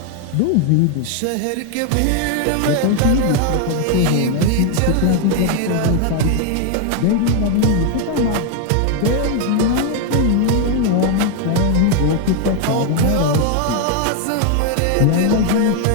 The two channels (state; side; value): different; both; correlation 0.01